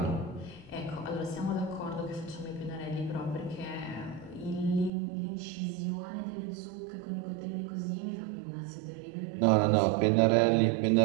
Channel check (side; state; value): left; drops out; at 4.9 s